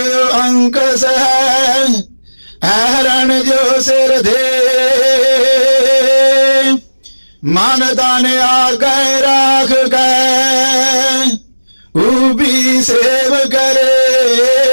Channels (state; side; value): inverted; both; correlation -1.00